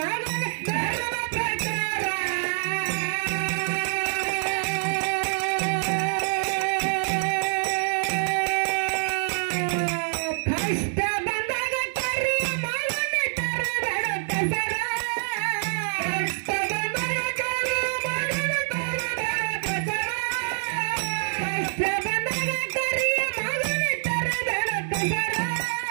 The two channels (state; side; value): silent; left; digital silence